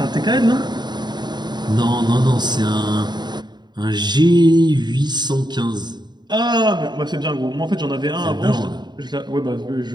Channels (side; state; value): left; late; 0.21 ms